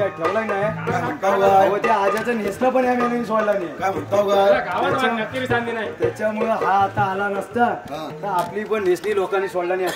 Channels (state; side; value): identical; both; correlation 1.00